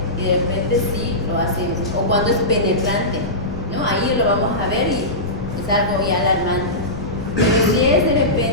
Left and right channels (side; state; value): left; noise; rumble, 11 dB below the sound